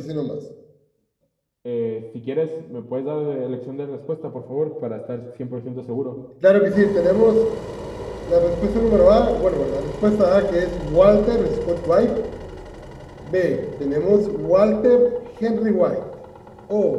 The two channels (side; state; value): both; identical; correlation 1.00